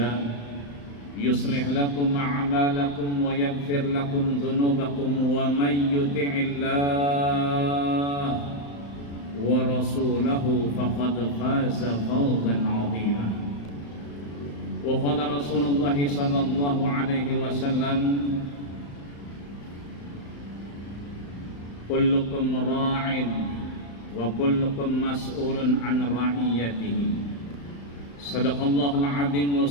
يصلح لكم أعمالكم ويغفر لكم ذنوبكم ومن يطع الله ورسوله فقد فاز فوزا عظيما. وقال رسول الله صلى الله عليه وسلم kullukum ra'in wa kullukum mas'ulun an ra'iyatihi. Sadaqallahul azim wa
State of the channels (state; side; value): late; right; 35 ms